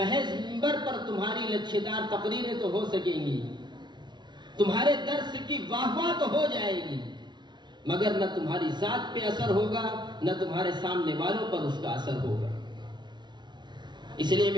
منبر پر تمہاری لچھیدار تقریریں تو ہو سکیں گی، تمہارے درس کی واہ واہ تو ہو جائے گی، مگر نہ تمہاری ذات پہ اثر ہوگا، نہ تمہارے سامنے والوں پر اس کا اثر ہوگا. اس لیے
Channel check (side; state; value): left; late; 0.21 ms